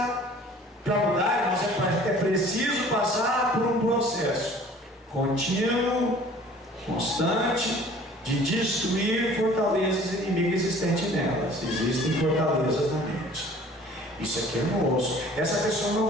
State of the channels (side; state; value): both; normal; correlation 0.49